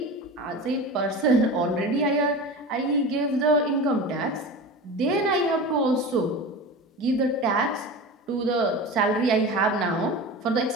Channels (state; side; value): normal; both; correlation 0.31